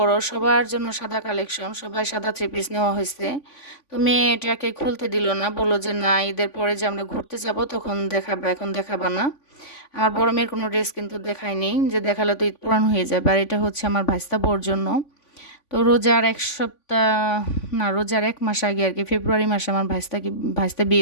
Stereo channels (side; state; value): right; late; 3.5 ms